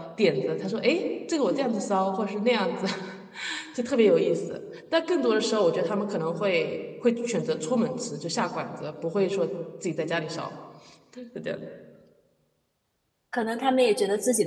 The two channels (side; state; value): both; identical; correlation 1.00